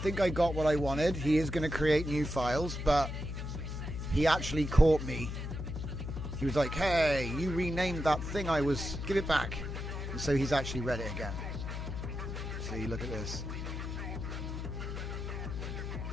I got what I wanted. He is going to create new files, but he actually caught me. He was like, hey, you renamed that thing give it back. And so he's actually read it again. See, look at this.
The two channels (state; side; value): noise; left; hum, 5 dB below the sound